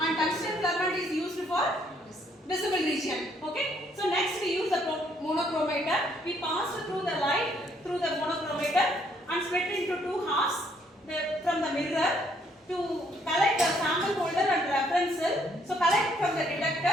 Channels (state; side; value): normal; both; correlation 0.68